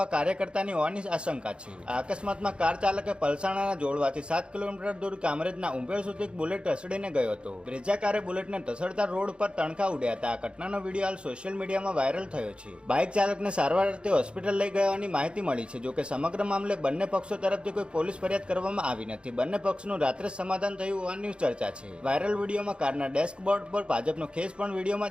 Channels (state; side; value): late; left; 0.056 ms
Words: કાર્યકર્તાની હોવાની આશંકા છે. આ અકસ્માતમાં કાર ચાલકે પલસાણાના જોડવાથી 7 કિલોમીટર દૂર કામરેજના ઉંભેળ સુધી બુલેટ ધસડીને ગયો હતો. બ્રેઝા કારે બુલેટને ધસડતા રોડ પર તણખા ઉડ્યા હતા. આ ઘટનાનો વિડીયો હાલ સોશિયલ મીડિયામાં વાયરલ થયો છે. બાઇક ચાલકને સારવાર અર્થે હોસ્પિટલ લઈ ગયાની માહિતી મળી છે. જોકે સમગ્ર મામલે બંને પક્ષો તરફથી કોઈ પોલીસ ફરિયાદ કરવામાં આવી નથી. બંને પક્ષનું રાત્રે સમાધાન થયું હોવાની ચર્ચા છે. વાયરલ વિડીયોમાં કારના ડેસ્કબોર્ડ પર ભાજપનો ખેસ પણ